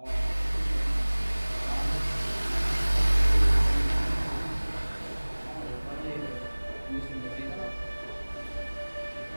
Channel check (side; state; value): both; inverted; correlation -1.00